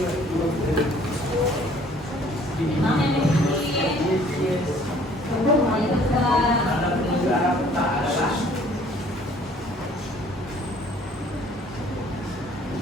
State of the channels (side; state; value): both; normal; correlation 0.57